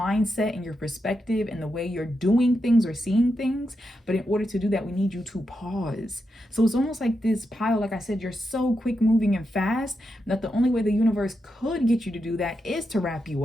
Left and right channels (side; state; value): both; normal; correlation 0.86